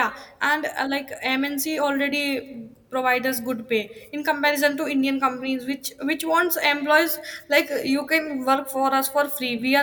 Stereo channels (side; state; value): both; identical; correlation 1.00